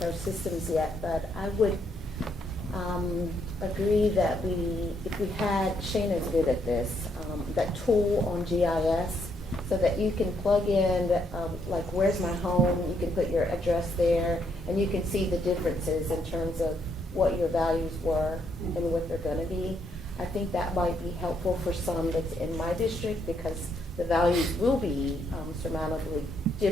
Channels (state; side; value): normal; both; correlation 0.74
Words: systems yet, but I would agree that if we had, Shayna's good at this, that tool on GIS, so that you can plug in, like, where's my home, you can put your address there, and you can see the differences in terms of what your values were and what they're gonna be. I think that might be helpful for some that's in my district, because the values will be surmountably